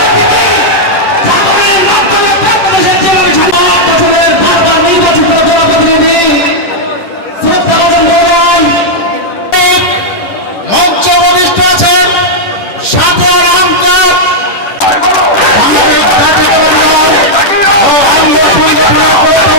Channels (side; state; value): right; late; 10 ms